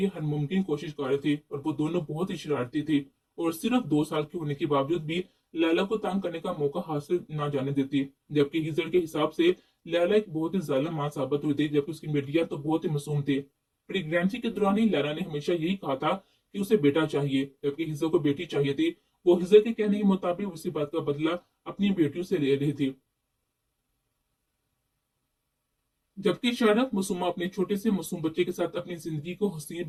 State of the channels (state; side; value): identical; both; correlation 1.00